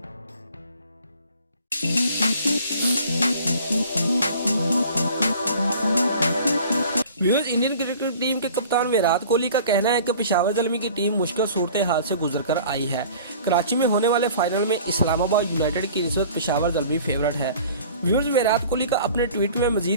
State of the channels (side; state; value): both; inverted; correlation -0.47